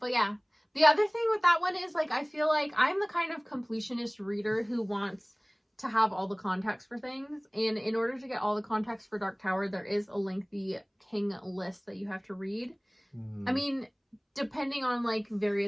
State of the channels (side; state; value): both; identical; correlation 1.00